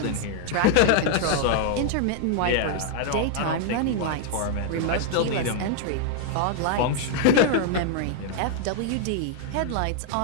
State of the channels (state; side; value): different; both; correlation 0.00